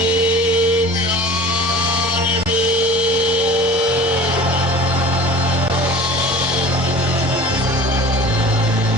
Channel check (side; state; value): both; normal; correlation 0.41